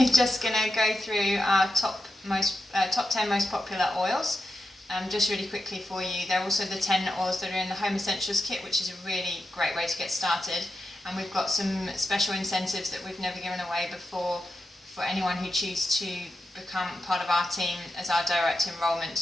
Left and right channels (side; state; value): both; normal; correlation 0.88